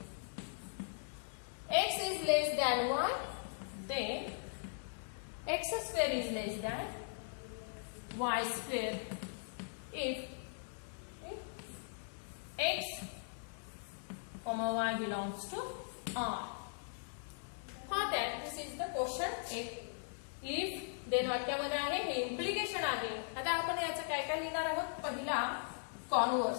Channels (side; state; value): right; silent; 52 dB below the other